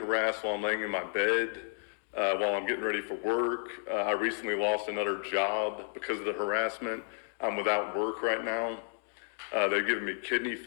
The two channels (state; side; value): silent; right; 56 dB below the other